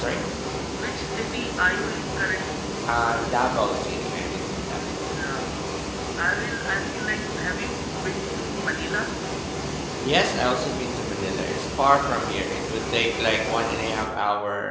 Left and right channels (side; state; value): both; identical; correlation 1.00